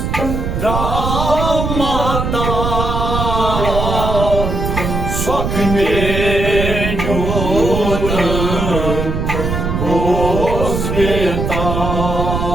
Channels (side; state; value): right; noise; rumble, 2 dB below the sound